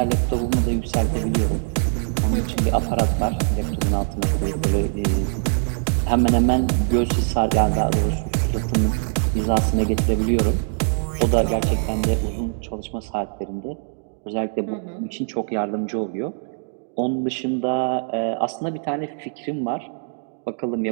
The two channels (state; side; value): silent; left; digital silence